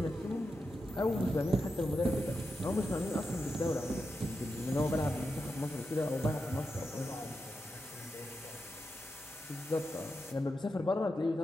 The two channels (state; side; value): normal; both; correlation 0.88